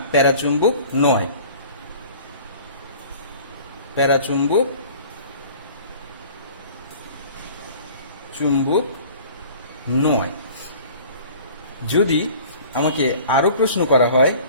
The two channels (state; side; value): inverted; both; correlation -0.46